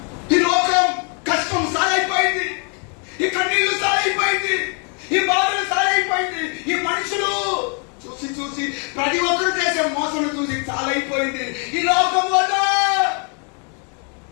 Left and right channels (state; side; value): quieter; right; 39.2 dB